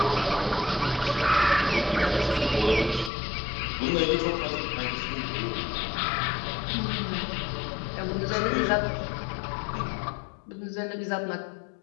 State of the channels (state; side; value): drops out; right; at 3.1 s